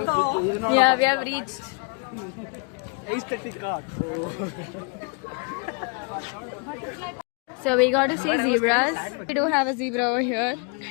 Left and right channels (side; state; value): right; quieter; 33.5 dB